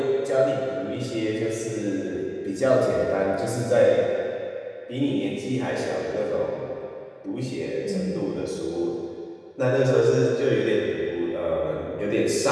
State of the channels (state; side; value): identical; both; correlation 1.00